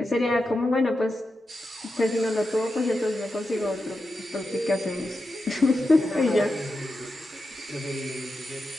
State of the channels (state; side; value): normal; both; correlation 0.89